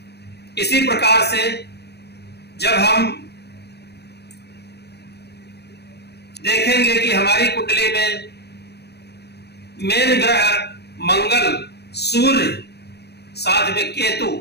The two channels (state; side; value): late; right; 0.48 ms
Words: इसी प्रकार से जब हम देखेंगे कि हमारी कुंडली में मेन ग्रह मंगल, सूर्य, साथ में केतु